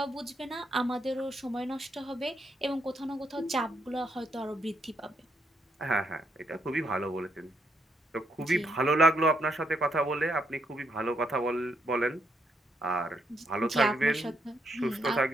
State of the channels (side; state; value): both; normal; correlation 0.76